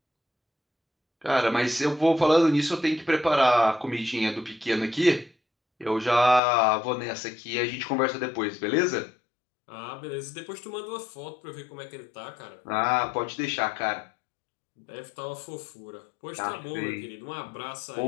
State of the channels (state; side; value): drops out; right; at 6.4 s